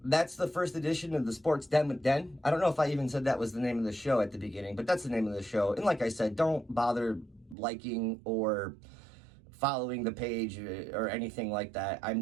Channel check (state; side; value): drops out; left; at 7.6 s